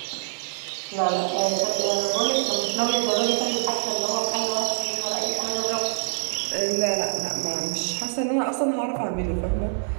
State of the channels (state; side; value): silent; left; 59 dB below the other